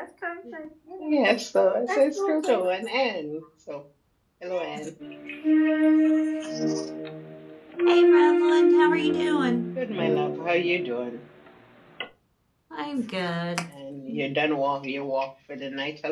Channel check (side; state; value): both; identical; correlation 1.00